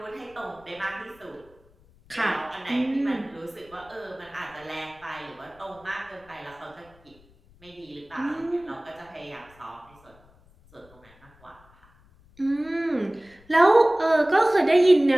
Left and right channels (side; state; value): left; noise; rumble, 28 dB below the sound